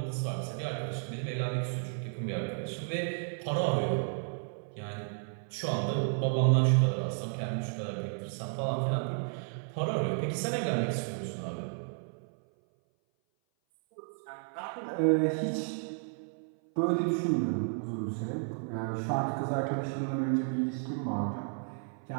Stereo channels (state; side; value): silent; left; 56 dB below the other